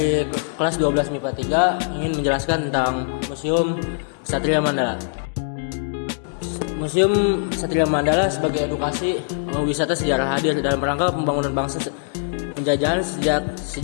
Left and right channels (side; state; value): right; silent; digital silence